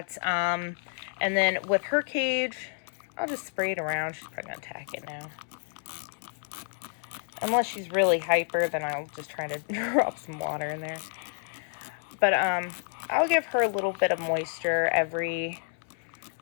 And then with her cage, I'll just spray it around. She's probably gonna attack it now. Unless she's really hyper, then I'll just try to drop some water in there. But I'll give her a little bit of moisture every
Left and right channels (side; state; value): right; silent; 58 dB below the other